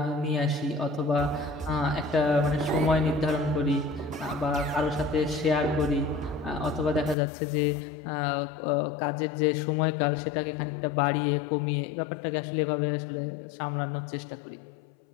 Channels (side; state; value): right; drops out; at 7.2 s